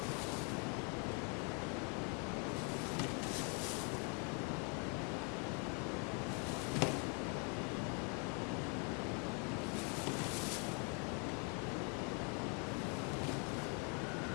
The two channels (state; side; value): quieter; right; 36.5 dB